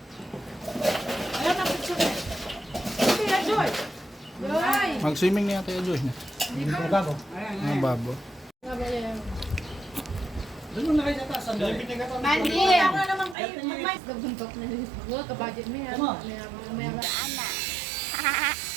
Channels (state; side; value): drops out; left; at 13.4 s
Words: Ayaw na picture. Kaya, Joy. Joy. mag-swimming na yata yung Joy niya. Babo. Mga babo. Doon mo na kayo sa taas. Mandi. Ako na naman kayo. Mag-mais. Gabuntok na nila. Huwag ka-budget mo yan.